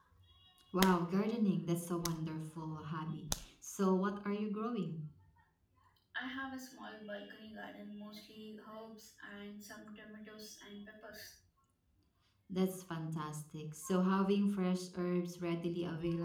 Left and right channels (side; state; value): both; identical; correlation 1.00